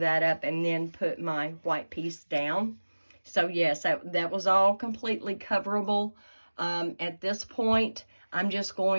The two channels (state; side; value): inverted; both; correlation -1.00